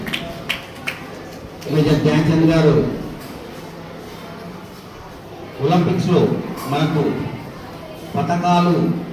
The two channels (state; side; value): identical; both; correlation 1.00